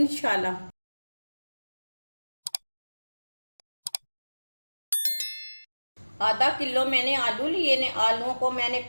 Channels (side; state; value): both; inverted; correlation -1.00